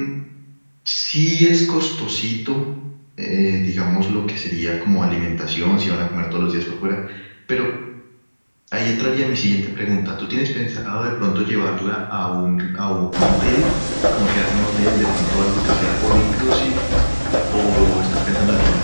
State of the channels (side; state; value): both; inverted; correlation -1.00